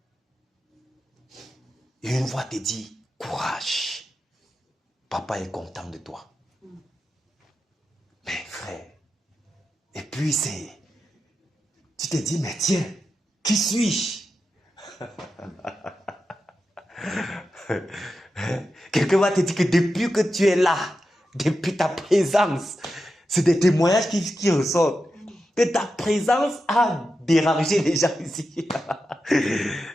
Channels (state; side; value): normal; both; correlation 0.89